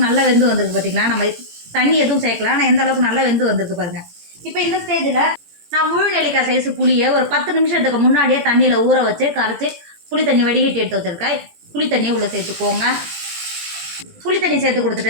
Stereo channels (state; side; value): late; left; 18 ms